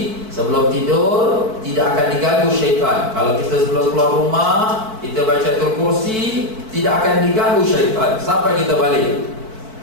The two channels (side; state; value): left; late; 4.6 ms